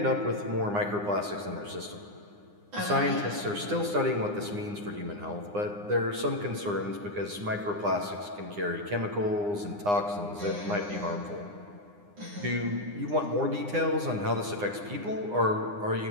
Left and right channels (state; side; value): late; left; 9.8 ms